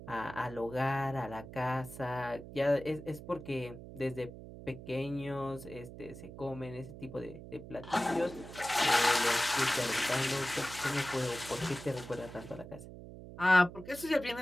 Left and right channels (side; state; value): right; noise; hum, 13 dB below the sound